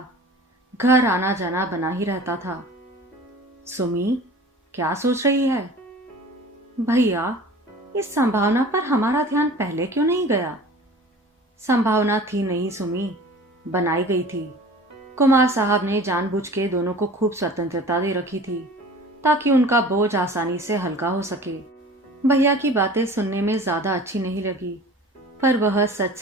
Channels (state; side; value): normal; both; correlation 0.42